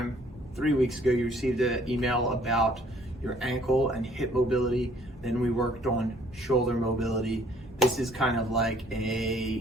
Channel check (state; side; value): normal; both; correlation 0.60